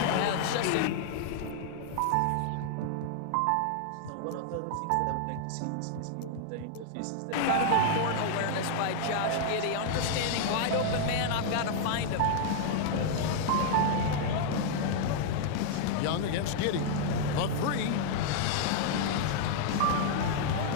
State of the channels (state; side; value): different; both; correlation -0.01